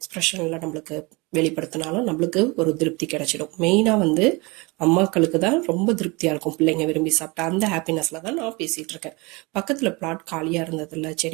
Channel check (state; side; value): quieter; left; 26.2 dB